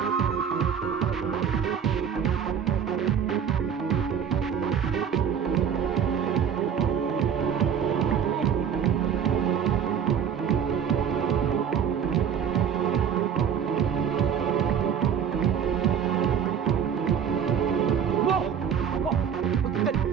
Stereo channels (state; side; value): quieter; left; 7.8 dB